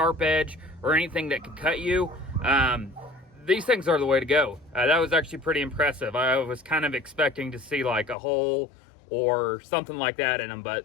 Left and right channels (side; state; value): right; drops out; at 8.2 s